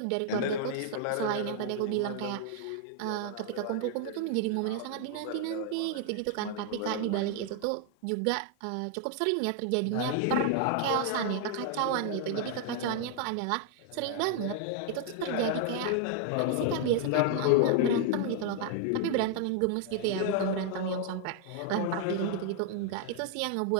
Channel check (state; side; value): different; both; correlation 0.00